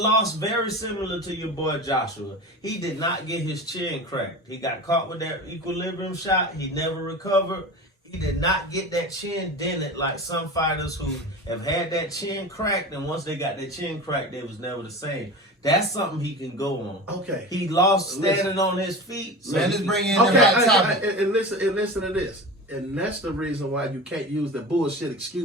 very similar to your boy Joshua. He did not get his chin cracked. He got caught with that equilibrium shot. He never recovered. He did not get that chin dented like some fighters who have had that chin cracked, and once they got their chin cracked, they was never the same. That's something he can go on. Okay. He lost standing on his feet. So Man, he let's bring in Okay, the hot topic. and listen to this. And that's the reason why you can't use the bullshit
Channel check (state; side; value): normal; both; correlation 0.31